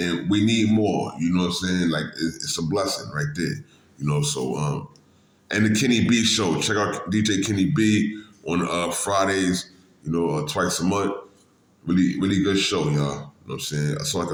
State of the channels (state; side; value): identical; both; correlation 1.00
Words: we need more, you know what I'm saying? Like, it's a blessing right there, you know, so, and the Kenny B show, check out DJ Kenny B on Fridays, you know, twice a month. Really, really good show, y'all. You know what I'm saying? That's all I